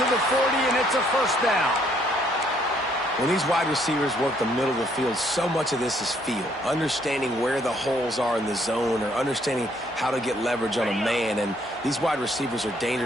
to the 40, and it's a first down. When these wide receivers work the middle of the field, so much of this is feel. Understanding where the holes are in the zone, or understanding how to get leverage on a man. And these wide receivers are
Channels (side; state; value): both; normal; correlation 0.67